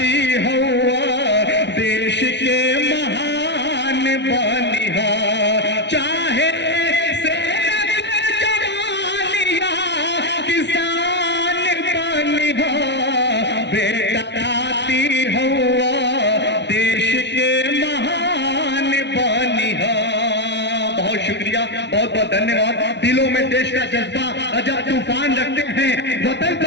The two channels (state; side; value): late; right; 0.51 ms